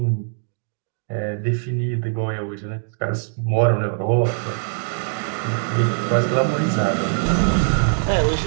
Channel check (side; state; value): left; silent; 63 dB below the other